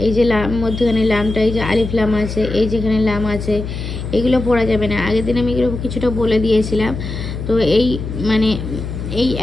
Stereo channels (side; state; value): left; noise; hum, 6 dB below the sound